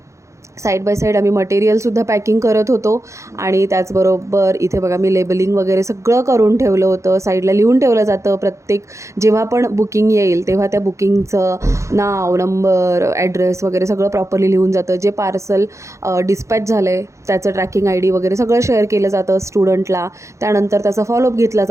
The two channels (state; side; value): late; left; 0.14 ms